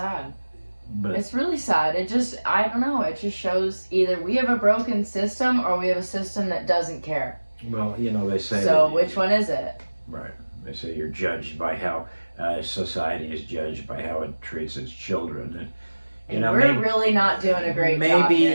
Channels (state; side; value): inverted; both; correlation -1.00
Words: But it's really sad. I don't know. It just shows either we have a broken system or we have a system that doesn't care. Well, they say. So which one is it? Right. They say you're judged by how society is judged by how it treats its children. And we're really not doing a great job.